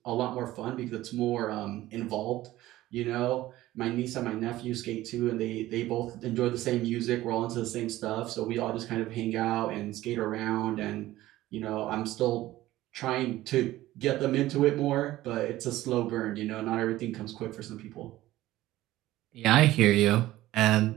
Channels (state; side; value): quieter; left; 15.9 dB